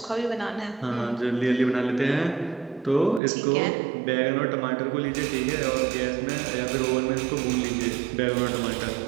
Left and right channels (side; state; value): left; drops out; at 3.2 s